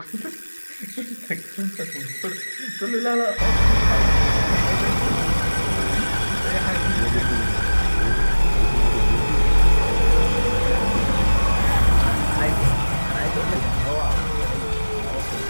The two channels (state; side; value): inverted; both; correlation -1.00